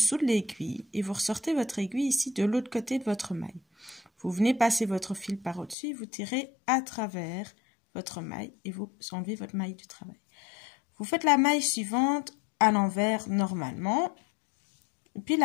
de l'aiguille, et vous ressortez votre aiguille ici de l'autre côté de votre maille. Vous venez passer votre fil par au-dessus, vous tirez à travers votre maille et vous enlevez votre maille du travail. Vous faites la maille suivante à l'envers normalement, et puis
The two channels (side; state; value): right; drops out; at 5.8 s